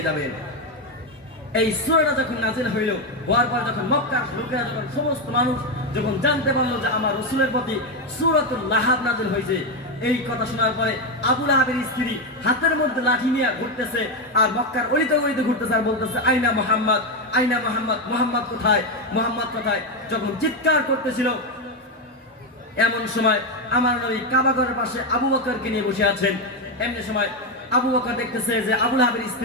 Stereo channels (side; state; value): both; normal; correlation 0.08